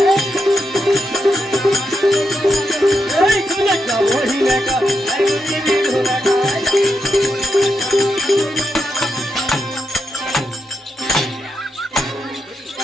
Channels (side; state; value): both; normal; correlation 0.85